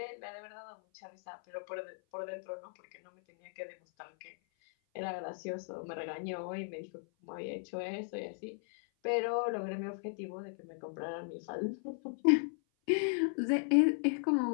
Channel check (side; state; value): right; silent; 53 dB below the other